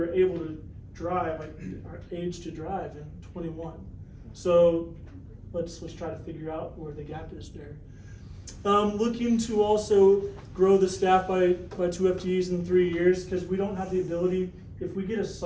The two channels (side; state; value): both; identical; correlation 1.00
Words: are able to drive, like are age to drive? And 21. So let's try to figure out where the gap is there. Looking to also grow the staff by 2 FTEs in 3 years, because we don't have the ability, if we get a